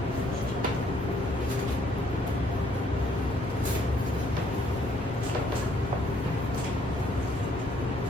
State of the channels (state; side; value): normal; both; correlation 0.66